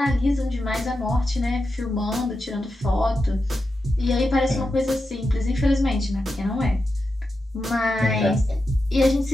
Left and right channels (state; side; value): normal; both; correlation 0.89